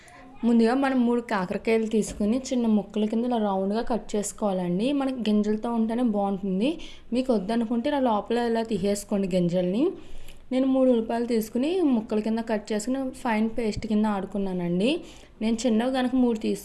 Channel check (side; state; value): both; identical; correlation 1.00